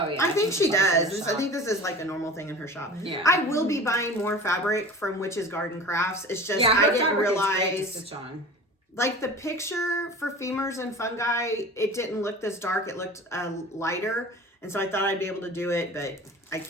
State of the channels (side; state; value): both; normal; correlation 0.38